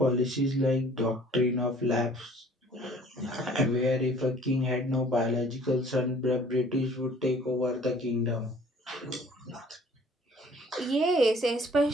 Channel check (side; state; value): both; normal; correlation 0.54